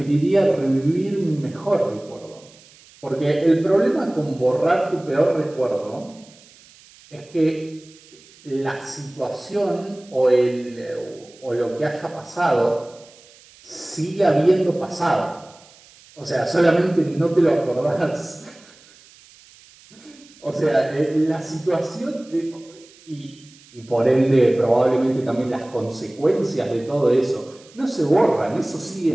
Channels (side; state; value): right; noise; hiss, 25 dB below the sound